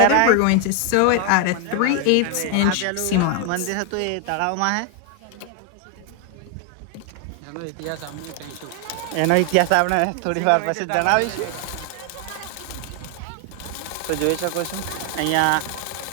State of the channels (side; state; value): both; different; correlation 0.01